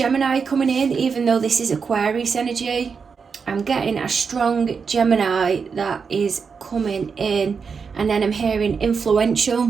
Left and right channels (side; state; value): left; quieter; 5.7 dB